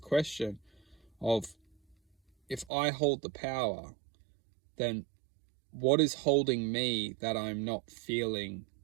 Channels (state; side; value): drops out; left; at 2.7 s